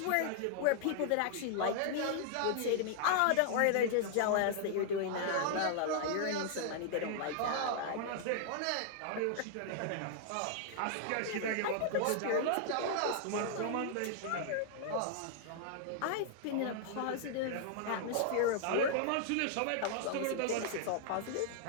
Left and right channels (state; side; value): different; both; correlation -0.01